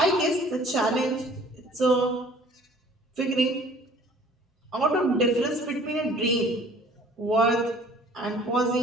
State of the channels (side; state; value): both; normal; correlation 0.52